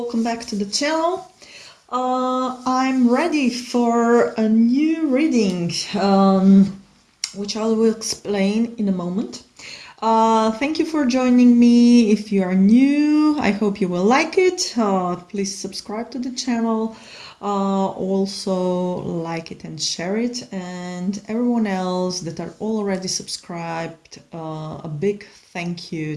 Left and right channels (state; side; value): identical; both; correlation 1.00